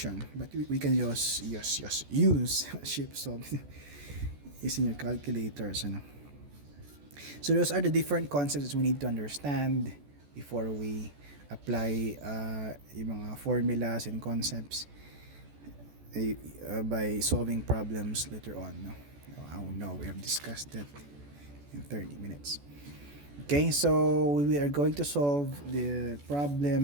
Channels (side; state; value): left; late; 14 ms